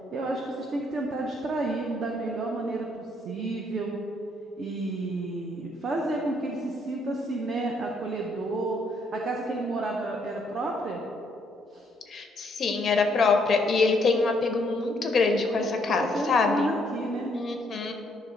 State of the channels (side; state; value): both; normal; correlation 0.70